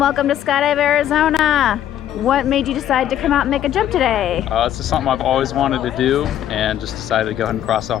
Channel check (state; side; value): quieter; right; 11.3 dB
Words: to Skydive Arizona. What made you decide to come out and make a jump today? It's just something I've always wanted to do and just decided to go ahead and cross